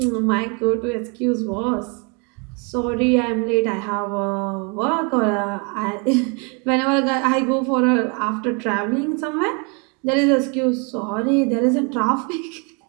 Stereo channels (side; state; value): left; quieter; 33.9 dB